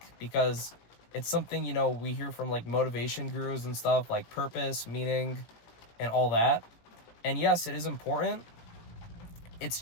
because it's something, we hear from like motivation gurus and stuff, like purpose, meaning, and all that. And yes, it is important. It's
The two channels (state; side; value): late; right; 18 ms